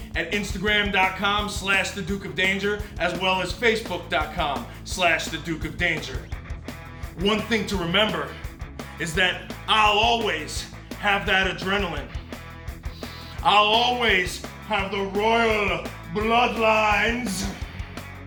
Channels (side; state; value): both; identical; correlation 1.00